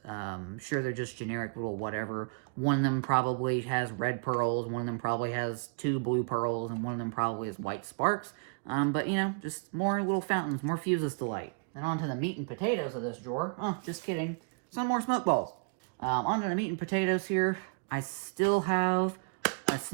Sure, they're just generic little whatever. One of them probably has red pearls, one of them probably has 2 blue pearls, and one of them probably has white sparks. But, just more little fountains, more fuses to light. Then on to the meat and potatoes of this drawer. Oh, just kidding. Some more smoke balls. On to the meat and potatoes here. I still have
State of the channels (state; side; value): quieter; left; 37.7 dB